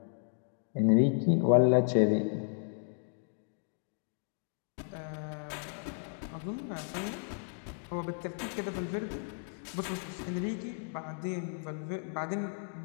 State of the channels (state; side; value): silent; right; digital silence